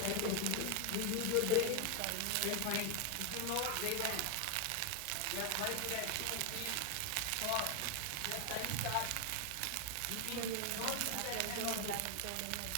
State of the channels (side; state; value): both; different; correlation 0.01